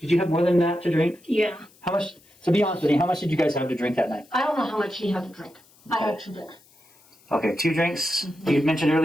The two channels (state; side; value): noise; left; hiss, 29 dB below the sound